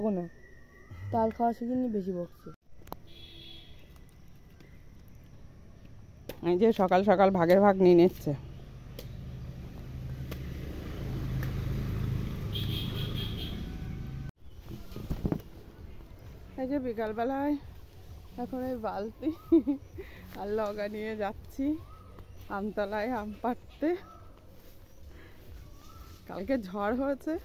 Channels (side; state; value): both; identical; correlation 1.00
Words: না, তাল খাওয়া শিখিনি, বেশি বকছে। এই যে সকাল সকাল ভাগের ভাগ নিয়ে নিচ্ছে। এই যে বিকালবেলায় এখন এই বালতি আর লগা নিয়ে যাচ্ছি আমতলায় আম পাড়তে। কালকে ঝড় হয়েছে,